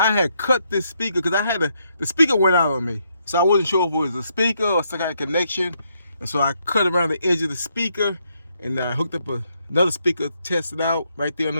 had cut this speaker because the speaker went out on me. So I wasn't sure if it was a speaker or some kind of connection. And so I cut around the edge of the speaker and I hooked up another speaker, tested out right there on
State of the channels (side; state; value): both; inverted; correlation -0.76